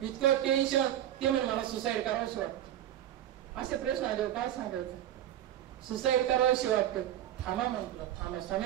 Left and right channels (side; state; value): left; quieter; 12.0 dB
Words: इतकं टेन्शन. ते म्हणे मला सुसाईड करावंशी वाटतं. असे प्रश्न आले काय सांगायचं? सुसाईड करावंशी वाटतं. थांबा म्हटलं, थांबा.